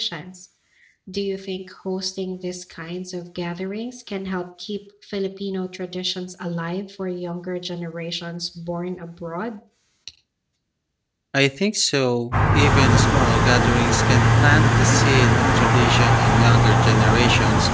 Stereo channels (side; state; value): both; identical; correlation 1.00